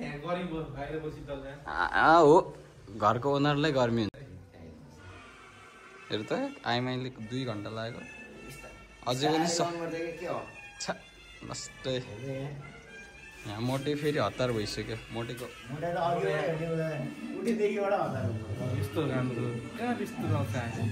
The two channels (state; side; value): identical; both; correlation 1.00